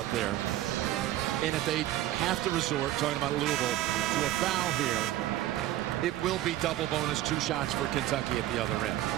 there. And if they have to resort, talking about Louisville, to a foul here, it will be double bonus, 2 shots for Kentucky at the other end.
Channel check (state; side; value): quieter; left; 14.2 dB